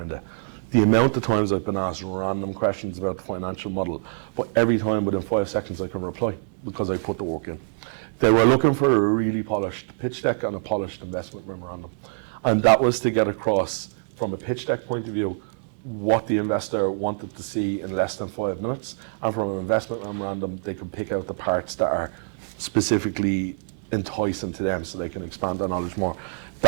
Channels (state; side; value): silent; left; digital silence